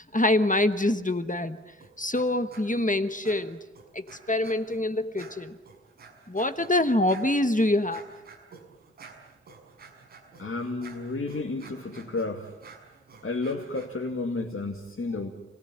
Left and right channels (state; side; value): normal; both; correlation 0.50